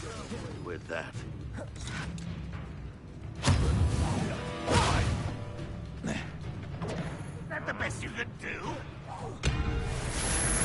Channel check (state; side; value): identical; both; correlation 1.00